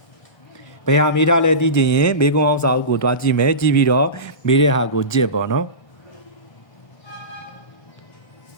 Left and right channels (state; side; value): late; right; 1.3 ms